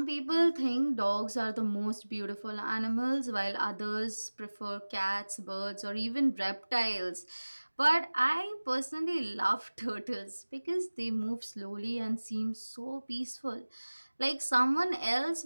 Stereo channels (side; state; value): both; inverted; correlation -1.00